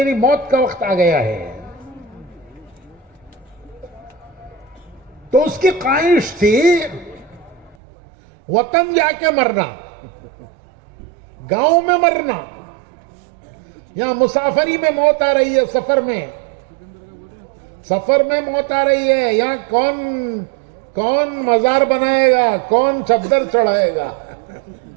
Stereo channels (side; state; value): left; drops out; at 7.8 s